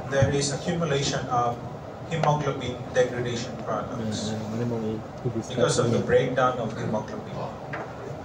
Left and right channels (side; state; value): both; identical; correlation 1.00